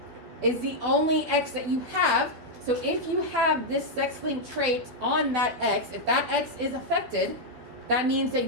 is the only X that you have. So if you have this sex-linked trait on that X, if that X is affected, that means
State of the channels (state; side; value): late; left; 13 ms